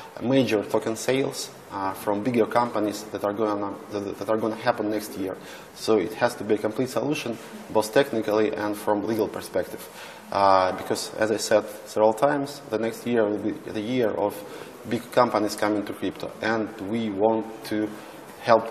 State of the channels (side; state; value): both; identical; correlation 1.00